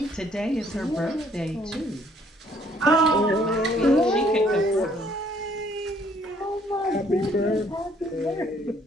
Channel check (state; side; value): normal; both; correlation 0.63